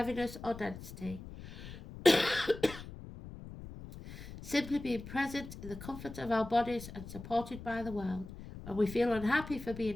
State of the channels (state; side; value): noise; left; rumble, 13 dB below the sound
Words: or density. Simply being present in the comfort of our bodies and supported by the world. When we feel unhappy for